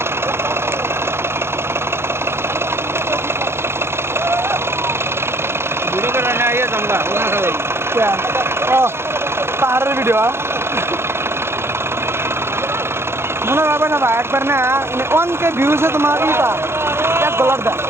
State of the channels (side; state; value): left; late; 0.12 ms